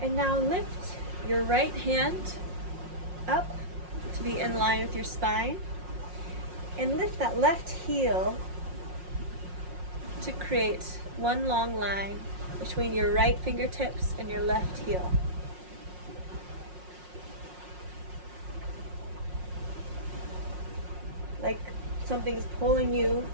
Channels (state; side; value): late; left; 5.5 ms